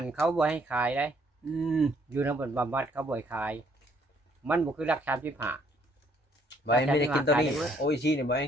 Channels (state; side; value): normal; both; correlation 0.66